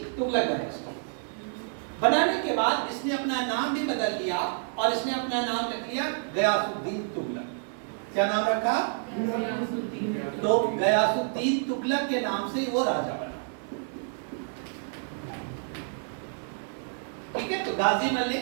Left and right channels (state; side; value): silent; left; 59 dB below the other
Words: तुगलक डायनेस्टी। बनाने के बाद इसने अपना नाम भी बदल लिया और इसने अपना नाम रख लिया गयासुद्दीन तुगलक। क्या नाम रखा? तो गयासुद्दीन तुगलक के नाम से वो राजा बना, ठीक है। तो गाजी